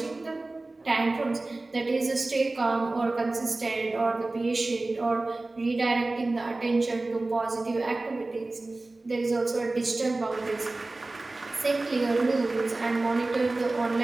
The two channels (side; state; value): left; quieter; 3.1 dB